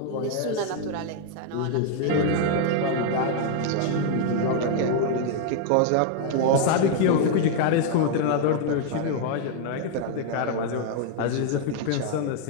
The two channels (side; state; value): both; different; correlation 0.00